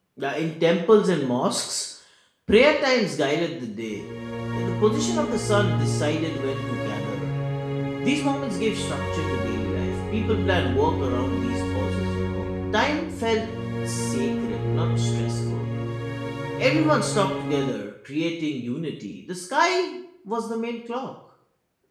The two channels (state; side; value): identical; both; correlation 1.00